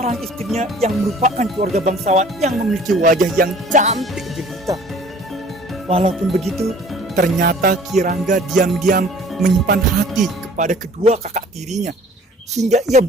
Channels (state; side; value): normal; both; correlation 0.51